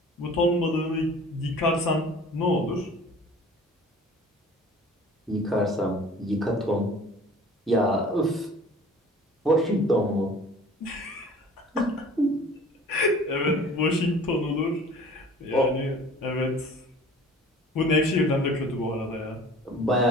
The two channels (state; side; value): normal; both; correlation 0.47